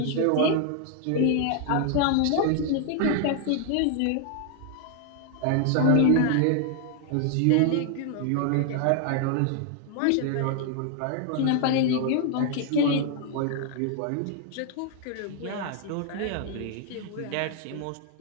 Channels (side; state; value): both; different; correlation 0.00